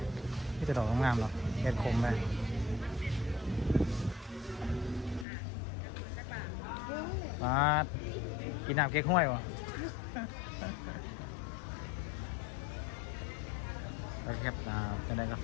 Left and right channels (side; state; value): right; drops out; at 5.2 s